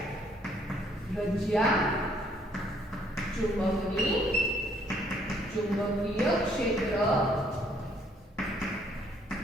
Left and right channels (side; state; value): both; normal; correlation 0.66